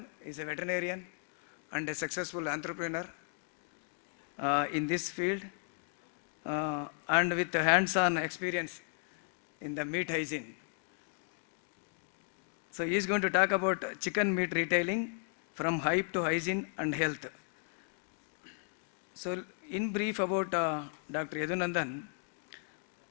is a veterinarian and a successful entrepreneur in this field and with hands-on experience in the meat hygiene. So he is going to talk about chicken meat retailing from hype to hygiene and health. So in brief about Dr. Yadunandan.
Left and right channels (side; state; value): right; silent; 54 dB below the other